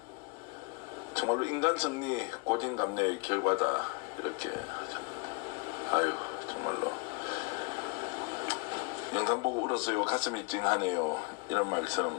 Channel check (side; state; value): right; quieter; 29.4 dB